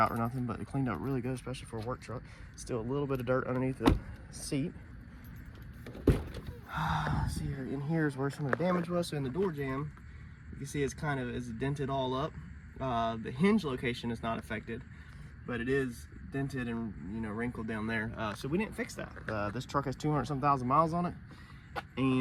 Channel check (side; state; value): both; identical; correlation 1.00